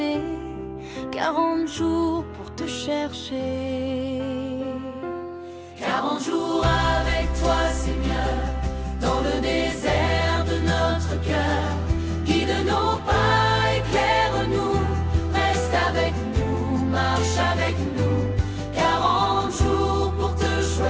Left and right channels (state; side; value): identical; both; correlation 1.00